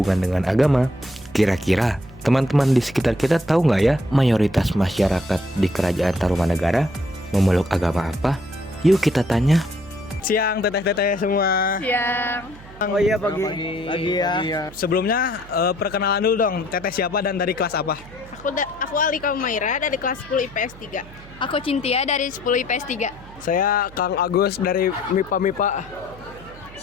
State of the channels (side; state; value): right; noise; hum, 20 dB below the sound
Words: dengan agama, kira-kira teman-teman di sekitar kita tahu nggak ya mayoritas masyarakat di kerajaan Tarumanegara memeluk agama apa? Yuk kita tanya. Siang teteh-teteh semua. Siang. Oh iya pagi ya. Sebelumnya perkenalan dulu dong. Teteh siapa dan dari kelas apa? Aku Alika Umaira dari kelas 10 IPS 3. Aku Cintia dari 10 IPS 3. Saya Kang Agus dari MIPA.